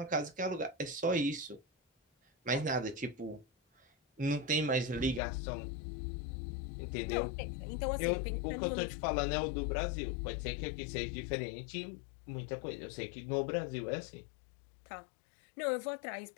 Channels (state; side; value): drops out; right; at 5.2 s